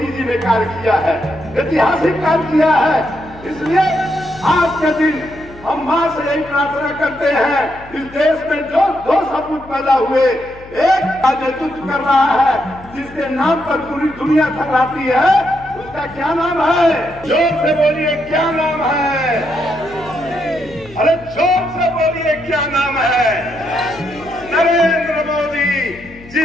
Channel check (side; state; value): left; noise; hum, 20 dB below the sound